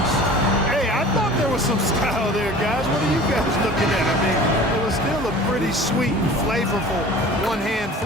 Hey, I thought there was some style there, guys. What are you guys looking at? I mean, it was still a pretty sweet, flavorful one-hand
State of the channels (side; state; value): both; normal; correlation 0.42